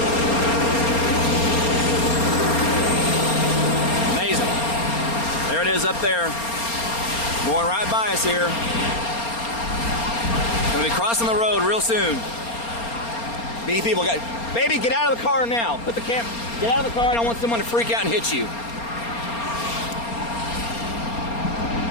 Amazing. There it is up there. Going right by us here. Gonna be crossing the road real soon. These people got, baby, get out of the car now. Put the camera. Get out of the car. I don't want someone to freak out and hit you.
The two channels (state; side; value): late; right; 4.3 ms